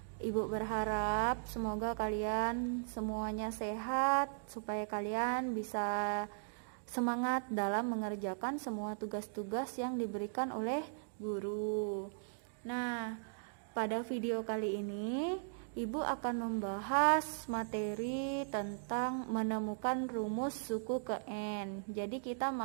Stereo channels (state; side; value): silent; left; digital silence